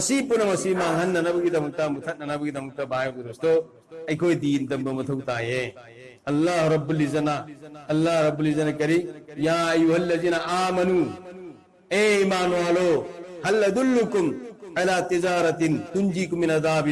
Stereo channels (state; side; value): identical; both; correlation 1.00